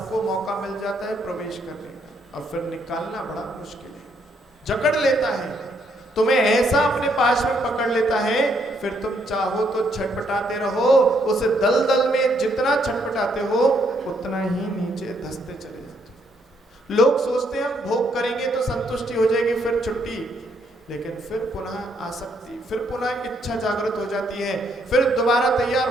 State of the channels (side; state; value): both; normal; correlation 0.72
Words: मौका मिल जाता है प्रवेश करने का, और फिर निकालना बड़ा मुश्किल है। जकड़ लेता है तुम्हें, ऐसा अपने पास में पकड़ लेता है, फिर तुम चाहो तो छटपटाते रहो, उस दलदल में जितना छटपटाते हो उतना ही नीचे धंसते चले जाते हो। लोग सोचते हैं हम भोग करेंगे तो संतुष्टि हो जाएगी, फिर छुट्टी, लेकिन फिर पुनः आसक्ति, फिर पुनः इच्छा जागृत हो जाती है, फिर दोबारा तैयार